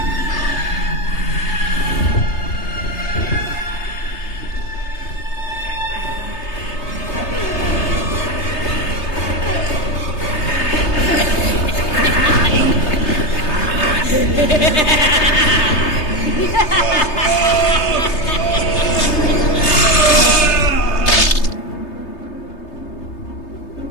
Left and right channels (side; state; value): right; late; 3.3 ms